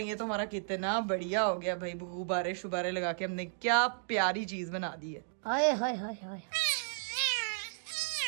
ये तो हमारा कितना बढ़िया हो गया भाई, गुब्बारे शुबारे लगा के हमने क्या प्यारी चीज बना दी है। हाय हाय हाय हाय,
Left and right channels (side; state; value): left; silent; digital silence